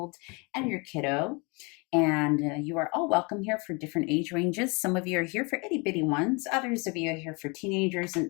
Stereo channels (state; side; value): quieter; right; 30.1 dB